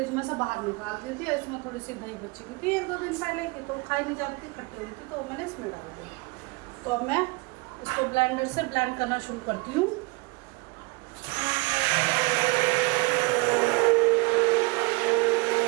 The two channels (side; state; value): left; quieter; 26.7 dB